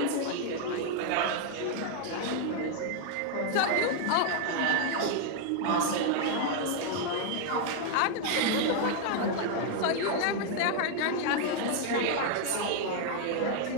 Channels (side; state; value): both; different; correlation 0.00